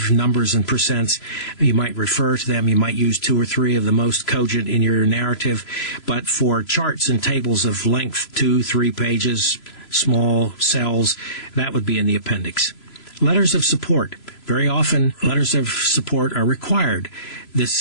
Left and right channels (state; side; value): late; right; 3.0 ms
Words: numbers and percents. You might refer to them. You might use 2 or 3 of the most cogent in your narrative. But for charts and tables of length, 2, 3 pages, small cells, that would be in the appendix. Letters of support. Very often, letters of support are required.